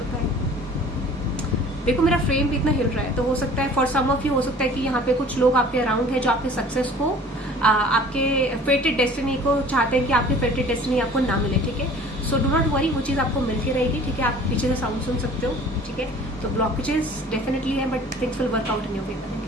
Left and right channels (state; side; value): normal; both; correlation 0.48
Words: देखो मेरा फ्रेम भी इतना हिल रहा है, तो हो सकता है फॉर सम ऑफ यू हो सकता है कि यहाँ पे कुछ लोग आपके अराउंड है जो आपके सक्सेस को, आपके फेटेड डेस्टिनी को चाहते हैं कि आपकी फेटेड डेस्टिनी आपको ना मिले, ठीक है। सो डू नॉट वरी, वो चीज आपको मिल के रहेगी, ठीक है। आप पीछे से साउंड सुन सकते हो, ठीक है। तो ब्लॉकेजेस डेफिनेटली है but things will work out in your favour. Thank